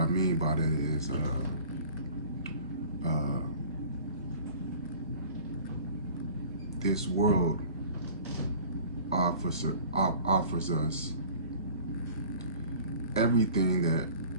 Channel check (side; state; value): both; inverted; correlation -0.45